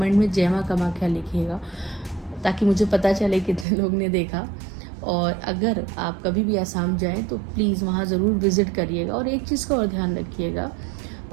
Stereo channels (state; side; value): drops out; left; at 3.7 s